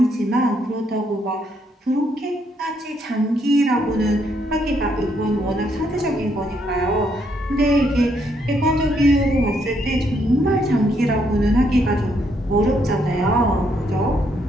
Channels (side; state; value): both; normal; correlation 0.74